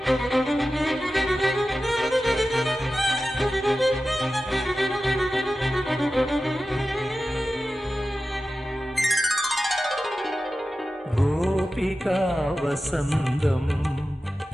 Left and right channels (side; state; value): both; normal; correlation 0.94